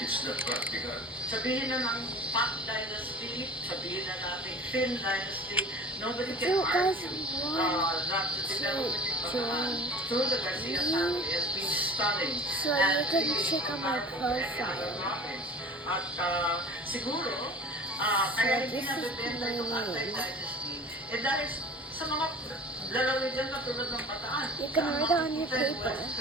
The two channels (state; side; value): normal; both; correlation 0.40